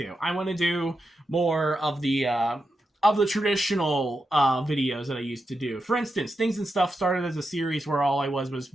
I want to do more of the traditional videos that I used to do. For instance, Things and Stuff started as a series where all I was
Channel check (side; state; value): both; normal; correlation 0.87